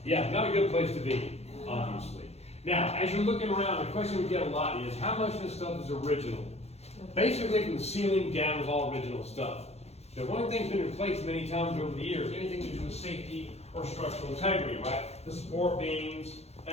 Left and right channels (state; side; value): late; right; 0.31 ms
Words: Yeah, not a good place to be, obviously. Now, as you're looking around, the question we get a lot is, how much of this stuff is original? Basically, from the ceiling down is all original stuff. The one thing's been replaced many times over the years, anything to do with safety or structural integrity, right? The support beams,